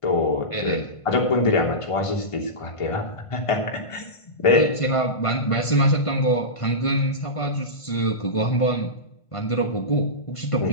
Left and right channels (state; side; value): late; right; 1.5 ms